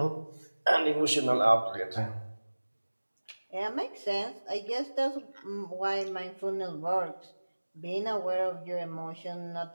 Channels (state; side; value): inverted; both; correlation -1.00